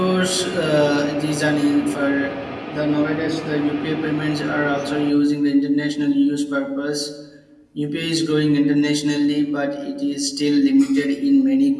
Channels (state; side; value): identical; both; correlation 1.00